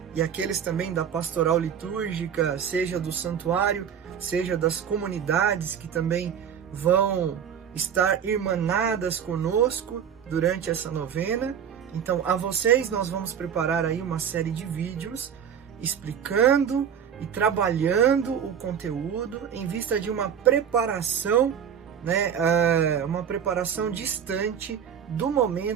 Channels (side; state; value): left; quieter; 8.2 dB